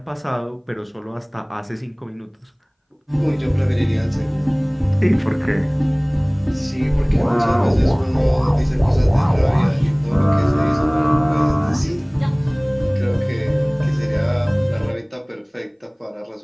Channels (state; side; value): identical; both; correlation 1.00